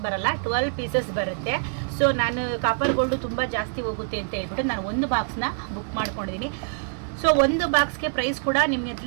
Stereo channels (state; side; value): silent; left; digital silence